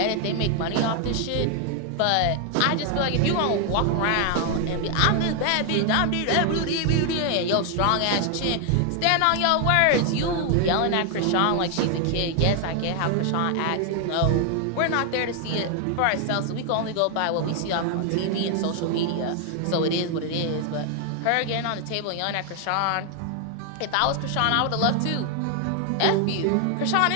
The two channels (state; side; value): different; both; correlation 0.00